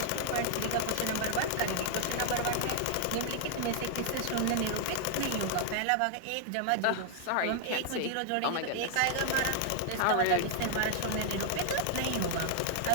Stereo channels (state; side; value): different; both; correlation 0.00